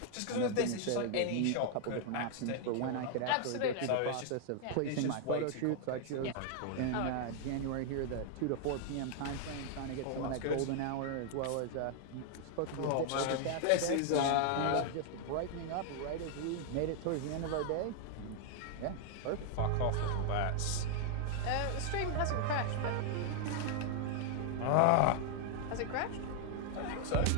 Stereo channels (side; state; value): both; different; correlation 0.00